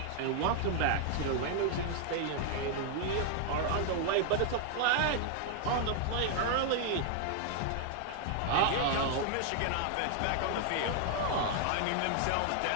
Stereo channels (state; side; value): different; both; correlation 0.00